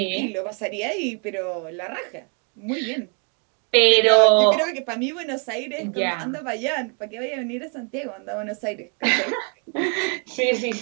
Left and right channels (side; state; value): left; quieter; 39.5 dB